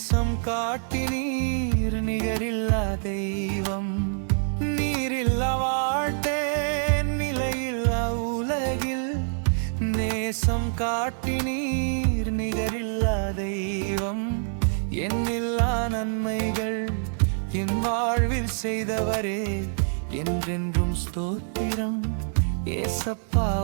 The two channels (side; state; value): left; silent; 61 dB below the other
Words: காட்டி நீர் நிகரில்லா தெய்வம். நீரில்லா வாழ்த்தேன் நிலையில்லா உலகில், நேசம் காட்டி நீர் நிகரில்லா தெய்வம். எண்ணில்லா நன்மைகள் என் வாழ்வில் செய்தவரே, என்றென்றும் ஸ்தோத்திரம். ஏசப்பா